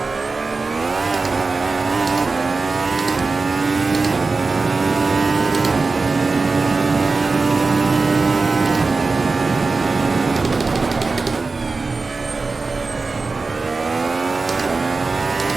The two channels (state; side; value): quieter; left; 3.9 dB